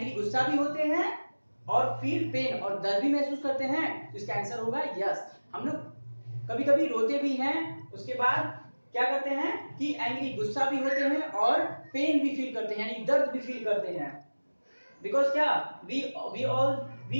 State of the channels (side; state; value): both; inverted; correlation -1.00